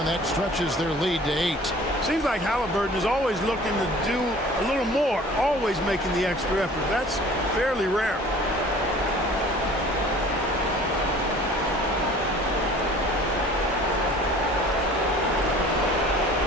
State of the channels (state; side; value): normal; both; correlation 0.48